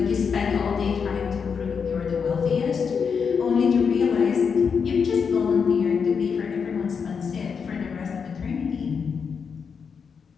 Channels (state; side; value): quieter; right; 6.2 dB